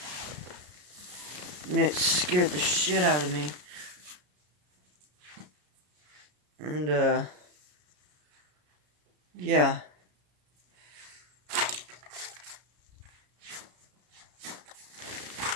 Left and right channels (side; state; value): left; late; 33 ms